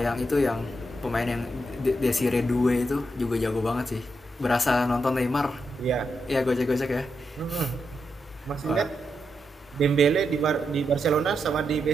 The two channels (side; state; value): both; normal; correlation 0.84